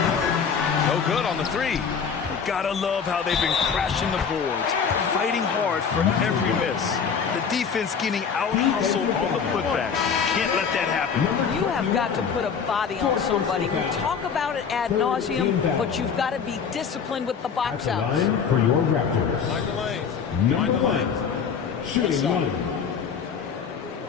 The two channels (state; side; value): quieter; right; 6.5 dB